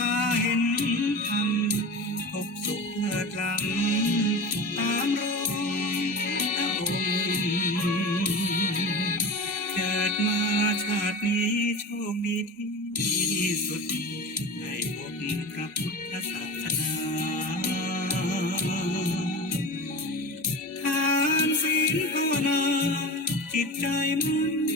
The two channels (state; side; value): normal; both; correlation 0.30